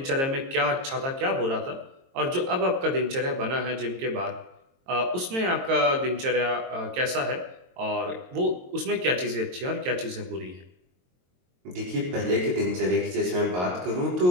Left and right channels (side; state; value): left; late; 22 ms